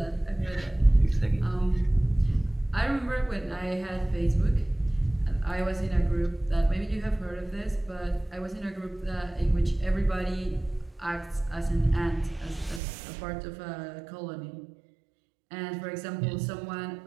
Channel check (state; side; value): drops out; left; at 12.8 s